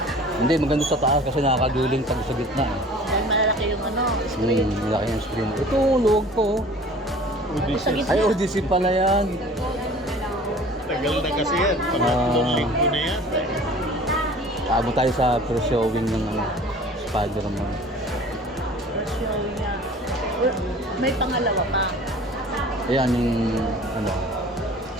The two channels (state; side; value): normal; both; correlation 0.46